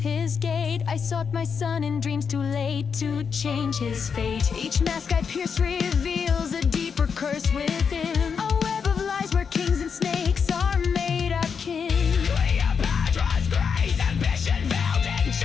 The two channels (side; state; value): right; quieter; 6.3 dB